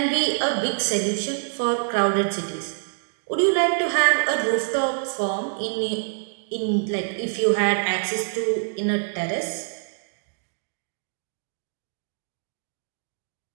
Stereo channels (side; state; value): left; silent; digital silence